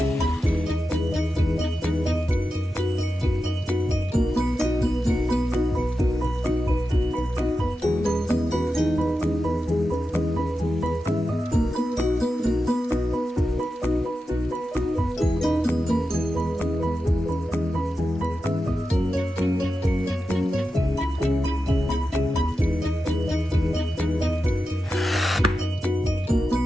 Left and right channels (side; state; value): both; normal; correlation 0.91